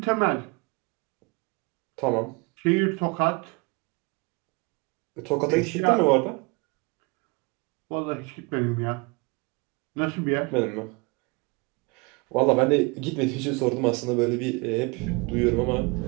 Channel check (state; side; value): quieter; left; 28.3 dB